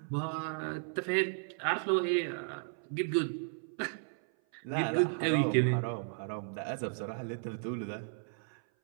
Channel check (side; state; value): left; silent; 55 dB below the other